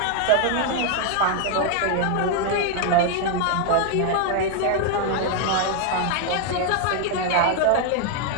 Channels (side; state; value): both; different; correlation 0.00